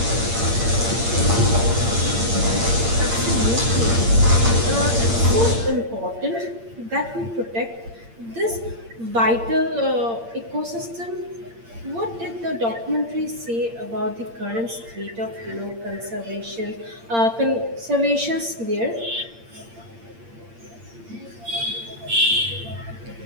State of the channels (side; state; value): left; late; 8.7 ms